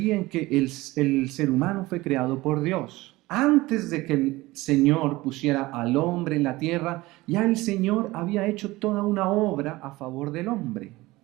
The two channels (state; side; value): quieter; left; 19.7 dB